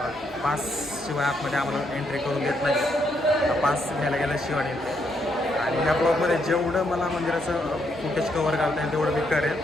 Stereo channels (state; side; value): normal; both; correlation 0.76